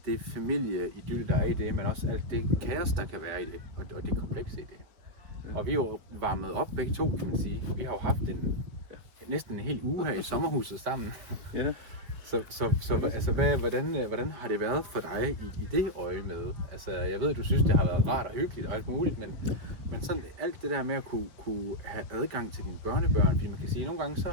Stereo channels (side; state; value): left; late; 5.2 ms